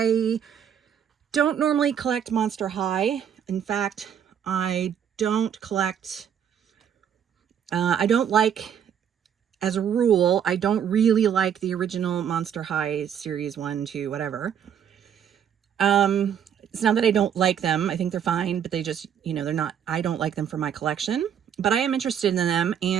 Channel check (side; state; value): left; quieter; 8.7 dB